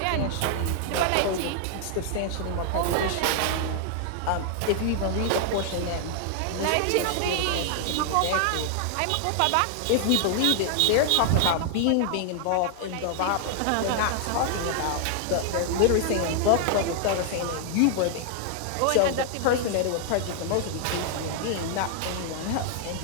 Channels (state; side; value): different; both; correlation 0.00